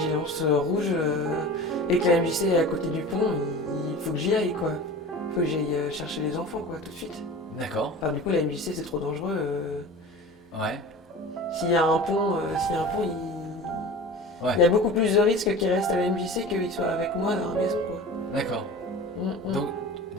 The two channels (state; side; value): normal; both; correlation 0.36